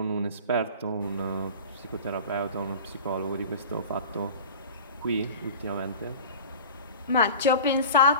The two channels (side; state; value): both; inverted; correlation -0.37